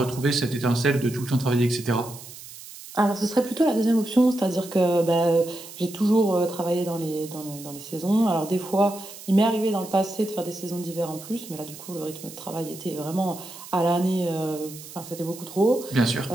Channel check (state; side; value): noise; right; hiss, 15 dB below the sound